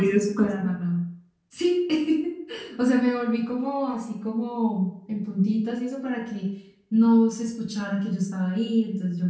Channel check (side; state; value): both; identical; correlation 1.00